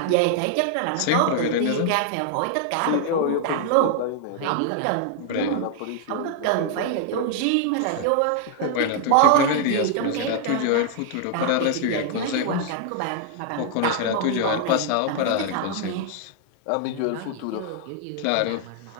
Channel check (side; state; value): both; different; correlation 0.00